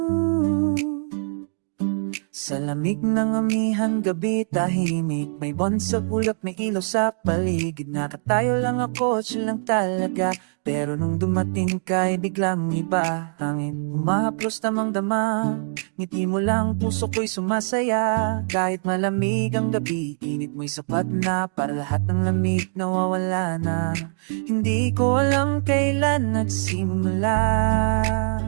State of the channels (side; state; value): left; silent; digital silence